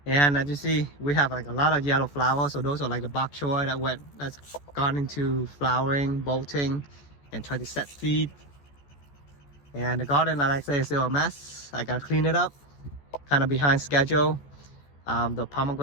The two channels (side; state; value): right; late; 14 ms